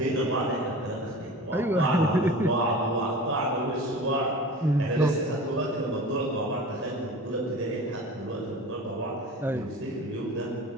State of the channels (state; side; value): normal; both; correlation 0.37